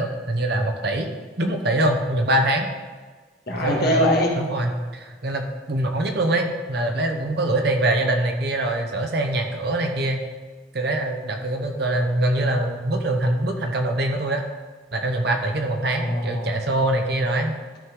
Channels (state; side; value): normal; both; correlation 0.41